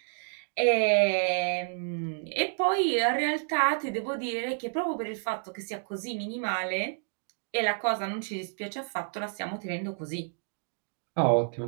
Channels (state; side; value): silent; left; digital silence